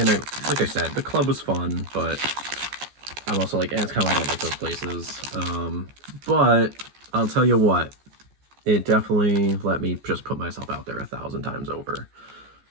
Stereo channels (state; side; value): late; left; 14 ms